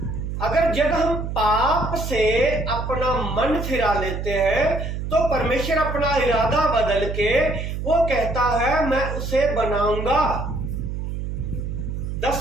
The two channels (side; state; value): right; noise; hum, 4 dB below the sound